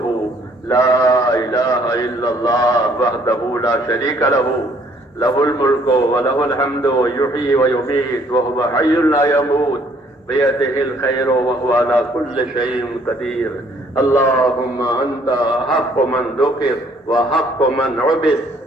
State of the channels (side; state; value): both; normal; correlation 0.62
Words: لا إله إلا الله وحده لا شريك له له الملك وله الحمد يحيي ويميت وهو حي لا يموت بيده الخير وهو على كل شيء قدير. اللهم أنت حق من ذكر وحق من عبد